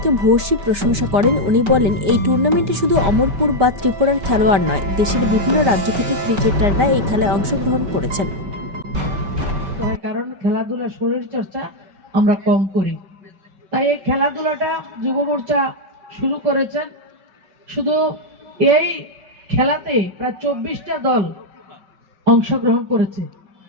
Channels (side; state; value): left; late; 5.2 ms